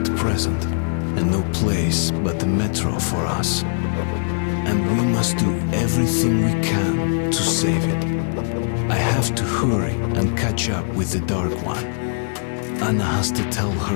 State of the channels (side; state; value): right; silent; digital silence